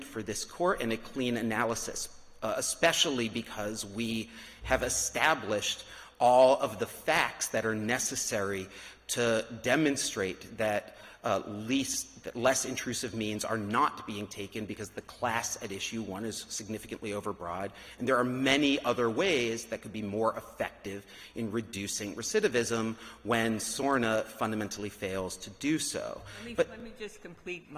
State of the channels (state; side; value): identical; both; correlation 1.00